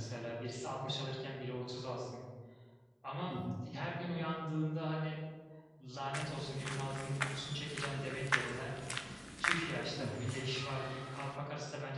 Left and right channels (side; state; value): both; identical; correlation 1.00